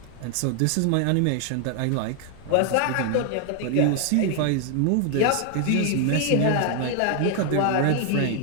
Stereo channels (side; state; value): both; different; correlation 0.00